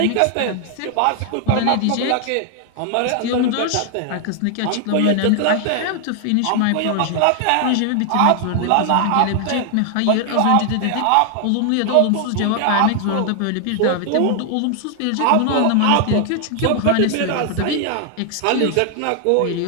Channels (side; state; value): both; different; correlation 0.00